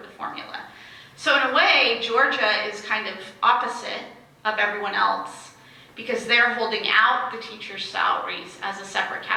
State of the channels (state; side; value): identical; both; correlation 1.00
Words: formula. So in a way, Georgia is kind of opposite of everyone else, because they're holding out the teachers' salaries as a separate